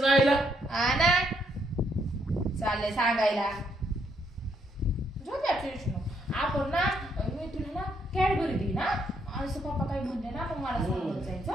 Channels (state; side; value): normal; both; correlation 0.74